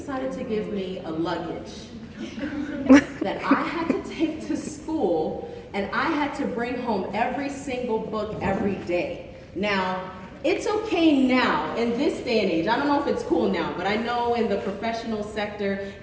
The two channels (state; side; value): identical; both; correlation 1.00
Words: to give me a luggage that I had to take to school, and I had to bring home every single book every day. Now, it's okay now, in this day and age, I don't know if it's cool now, but I know in the professional sector,